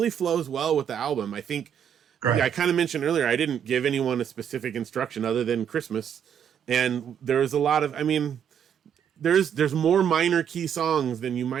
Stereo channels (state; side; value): quieter; left; 8.6 dB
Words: flows well with the album. I think, I kind of mentioned earlier, I didn't give anyone a specific instruction other than Christmas. And there was a lot of, there's more minor key songs than you